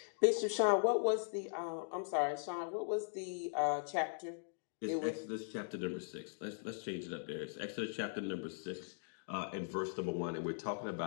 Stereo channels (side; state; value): right; silent; digital silence